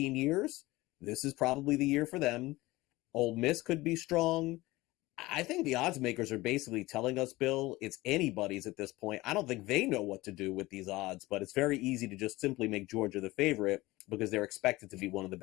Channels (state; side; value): quieter; right; 19.6 dB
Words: years, this is probably the year for them. Ole Miss could be strong. I think the odds makers are basically telling us, Bill, it's anybody's at this point. I don't think they know what to do with these odds, but it's very easy to just simply make Georgia the favorite because they're expected to be one of the